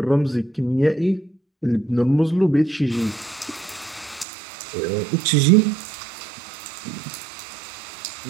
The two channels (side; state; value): left; drops out; at 4.2 s